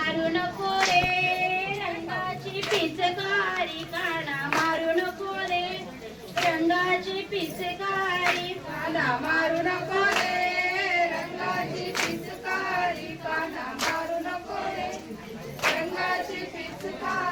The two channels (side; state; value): both; identical; correlation 1.00